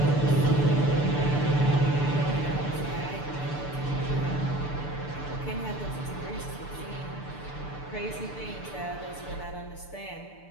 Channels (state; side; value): late; right; 6.8 ms